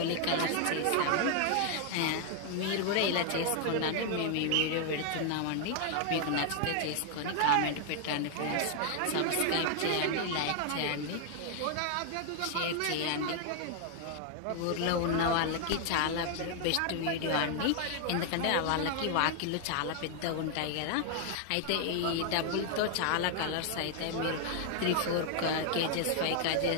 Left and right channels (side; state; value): both; different; correlation 0.00